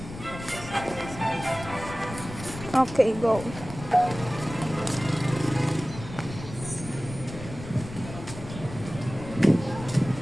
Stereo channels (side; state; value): left; noise; rumble, 12 dB below the sound